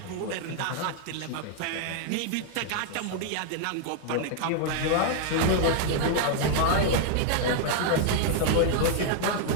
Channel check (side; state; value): both; different; correlation 0.00